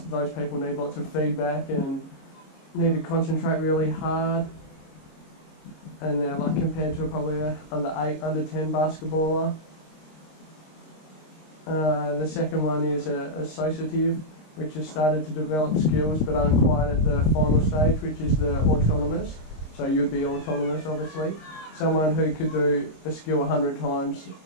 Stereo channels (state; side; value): late; right; 26 ms